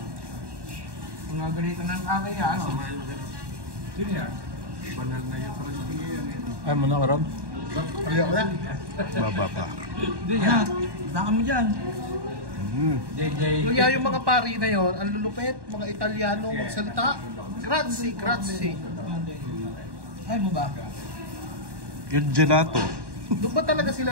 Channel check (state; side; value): late; left; 1.1 ms